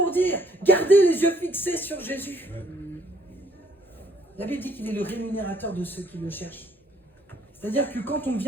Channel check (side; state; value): both; normal; correlation 0.65